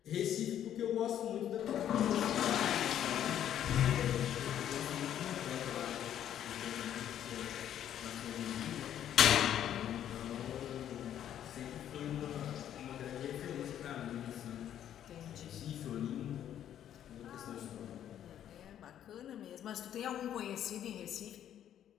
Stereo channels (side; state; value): right; quieter; 10.5 dB